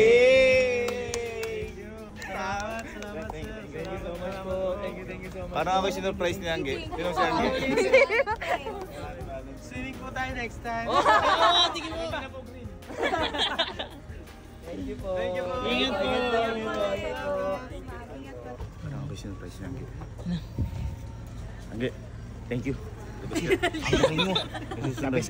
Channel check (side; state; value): both; identical; correlation 1.00